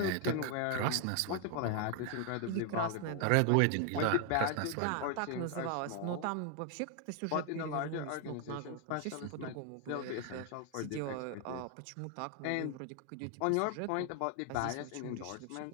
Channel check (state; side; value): different; both; correlation 0.00